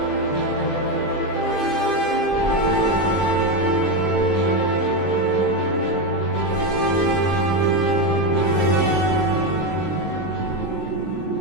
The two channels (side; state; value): right; late; 20 ms